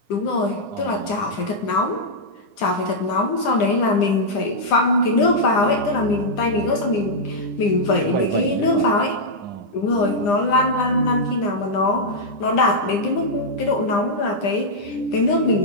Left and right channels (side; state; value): right; late; 9.9 ms